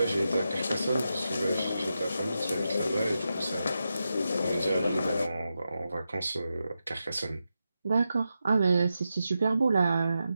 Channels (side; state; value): both; inverted; correlation -0.88